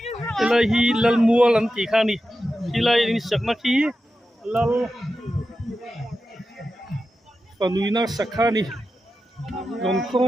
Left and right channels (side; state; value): both; normal; correlation 0.91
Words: lai hi lal mual an ti khani hilai ni sakna ki lal panuina sakhani rom